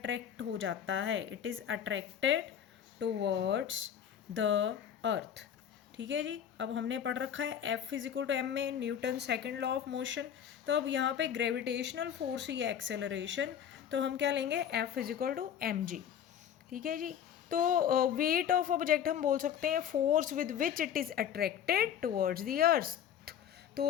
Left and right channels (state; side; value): quieter; right; 9.0 dB